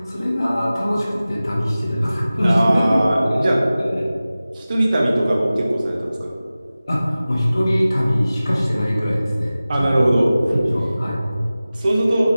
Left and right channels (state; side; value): inverted; both; correlation -0.96